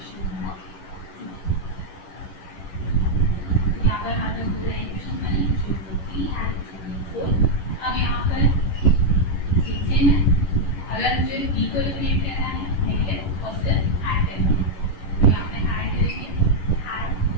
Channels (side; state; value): right; late; 11 ms